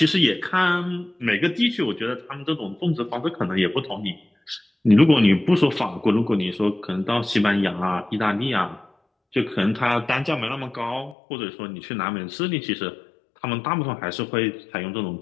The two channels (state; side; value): drops out; right; at 11.2 s